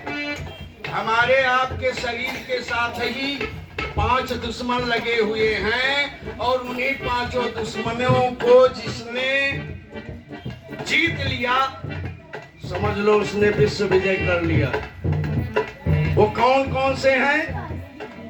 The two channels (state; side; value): identical; both; correlation 1.00